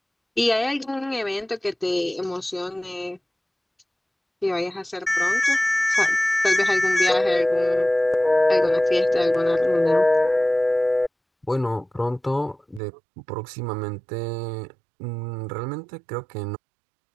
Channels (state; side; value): drops out; left; at 12.8 s